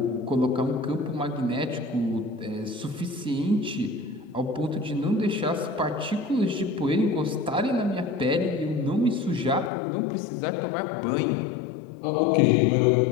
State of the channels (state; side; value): drops out; right; at 9.7 s